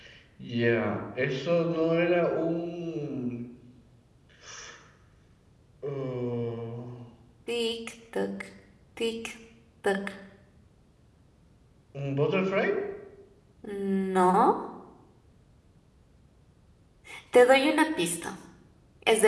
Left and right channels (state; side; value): identical; both; correlation 1.00